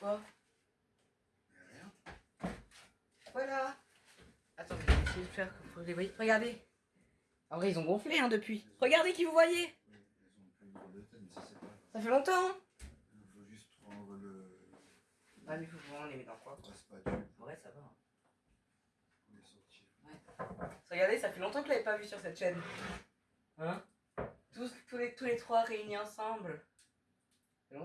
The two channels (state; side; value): identical; both; correlation 1.00